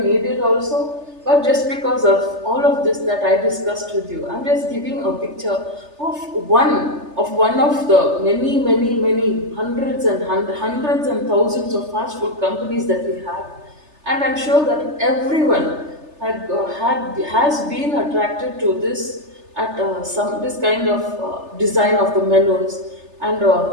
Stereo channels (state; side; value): late; left; 3.3 ms